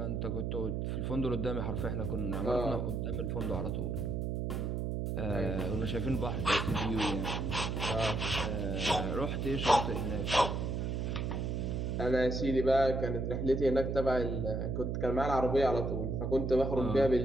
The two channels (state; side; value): noise; right; hum, 1 dB below the sound